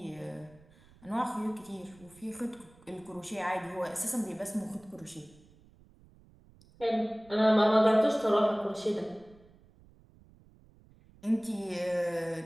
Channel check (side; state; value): right; noise; rumble, 26 dB below the sound